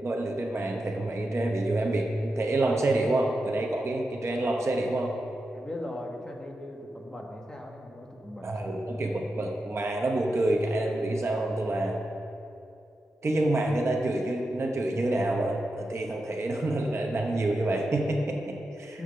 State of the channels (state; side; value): normal; both; correlation 0.89